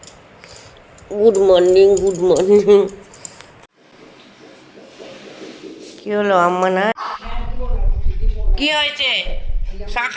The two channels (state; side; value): identical; both; correlation 1.00